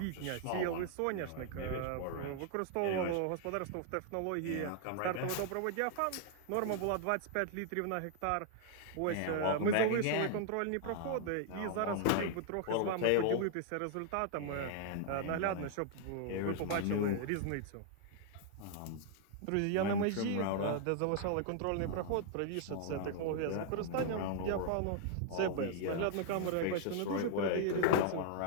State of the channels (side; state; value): both; different; correlation 0.00